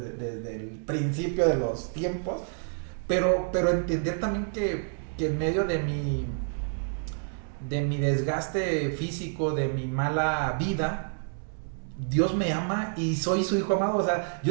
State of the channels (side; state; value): left; silent; digital silence